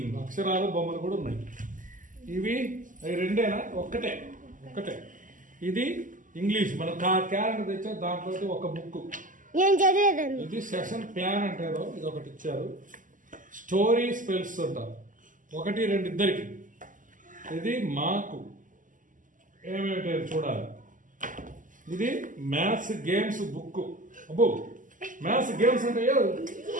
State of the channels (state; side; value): late; left; 0.38 ms